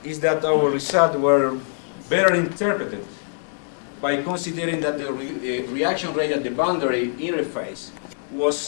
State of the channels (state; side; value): silent; right; digital silence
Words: is that our results were better interpreted by considering that the reaction rate at the boundary interface